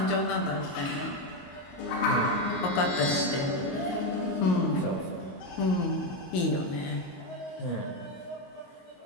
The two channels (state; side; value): late; right; 22 ms